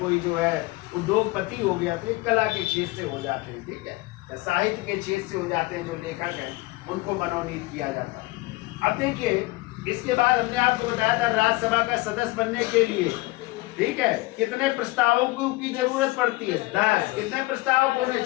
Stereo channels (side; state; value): right; quieter; 21.6 dB